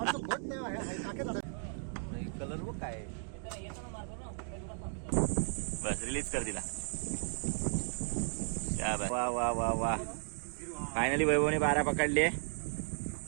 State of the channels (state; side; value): silent; left; 54 dB below the other